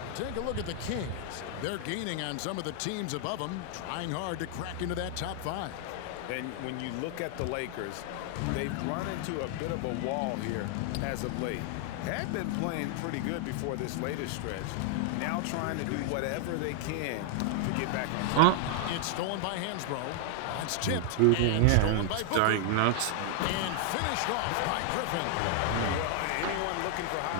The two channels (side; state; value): both; different; correlation 0.00